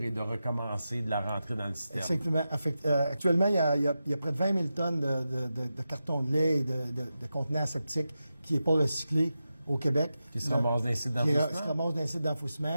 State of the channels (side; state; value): both; inverted; correlation -0.91